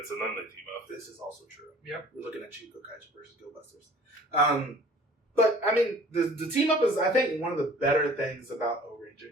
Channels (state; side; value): normal; both; correlation 0.49